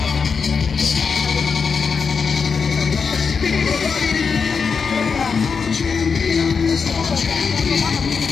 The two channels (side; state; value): right; quieter; 5.6 dB